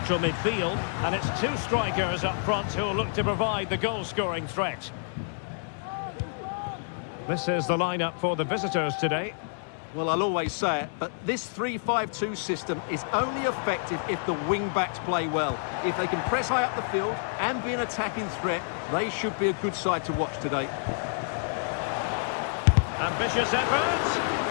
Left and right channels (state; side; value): silent; right; digital silence